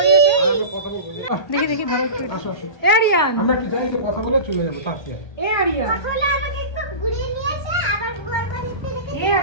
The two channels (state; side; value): late; right; 1.3 ms